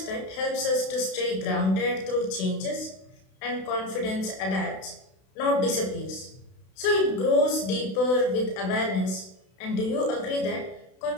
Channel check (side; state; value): right; late; 32 ms